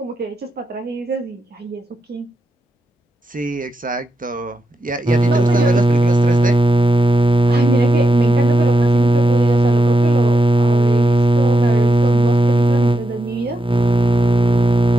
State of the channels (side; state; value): both; normal; correlation 0.86